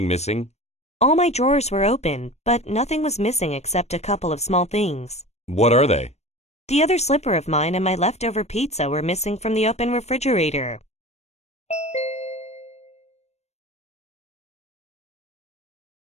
missing? All my drawers were open, but nothing was missing except a couple of small things. What are they? The other slipper of mine and my leftover pizza were missing from the open refrigerator.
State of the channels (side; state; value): right; late; 0.32 ms